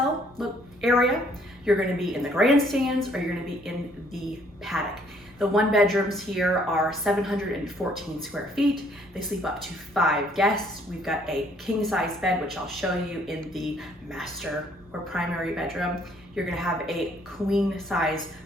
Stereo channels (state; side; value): normal; both; correlation 0.63